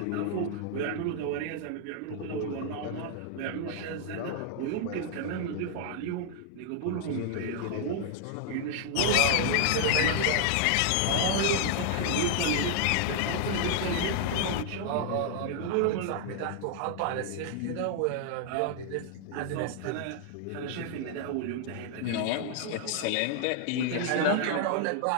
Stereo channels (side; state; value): both; different; correlation 0.00